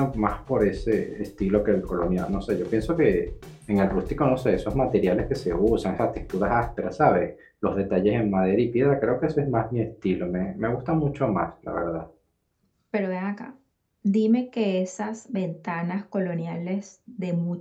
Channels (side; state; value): both; identical; correlation 1.00